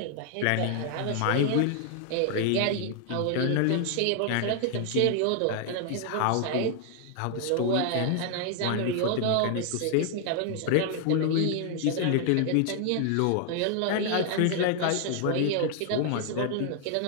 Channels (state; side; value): different; both; correlation 0.00